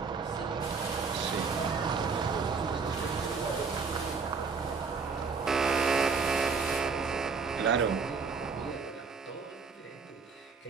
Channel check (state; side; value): quieter; left; 5.0 dB